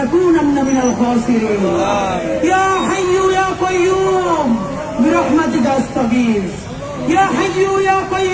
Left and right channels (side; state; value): both; identical; correlation 1.00